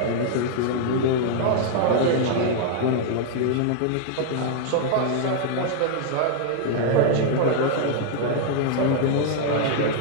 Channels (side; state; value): both; different; correlation 0.00